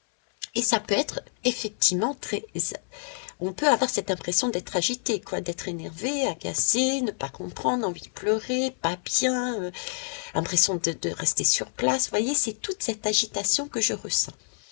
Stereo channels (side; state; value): right; silent; 60 dB below the other